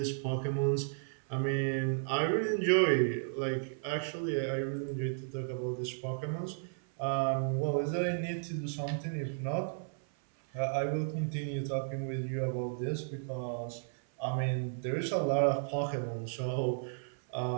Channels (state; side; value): silent; left; 55 dB below the other